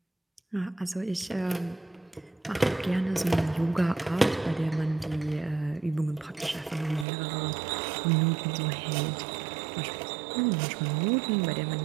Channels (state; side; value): drops out; left; at 7.1 s